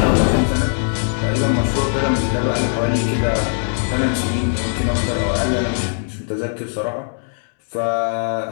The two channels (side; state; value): right; silent; digital silence